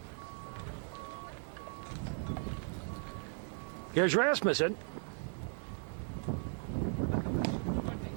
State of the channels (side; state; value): left; silent; 53 dB below the other